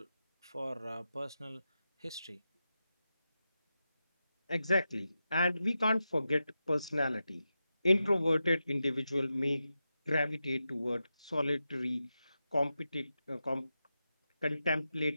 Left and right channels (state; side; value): inverted; both; correlation -0.90